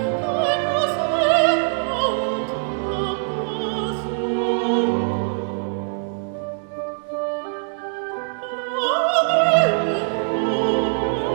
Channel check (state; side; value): silent; left; digital silence